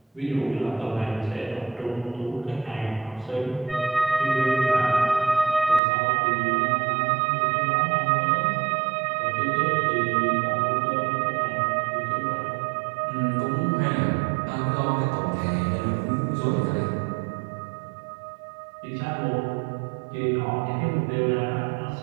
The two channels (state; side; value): drops out; left; at 5.8 s